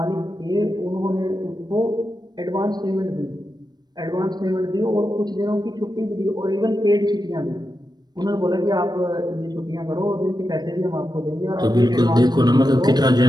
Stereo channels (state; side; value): late; left; 0.20 ms